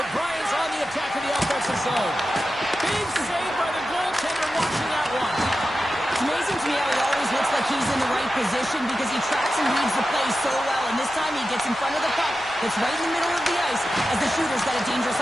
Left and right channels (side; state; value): right; noise; rumble, 24 dB below the sound